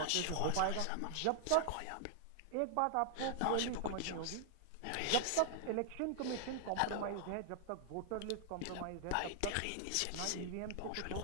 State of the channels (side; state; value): both; different; correlation 0.00